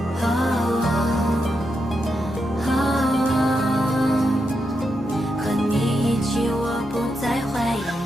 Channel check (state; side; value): normal; both; correlation 0.84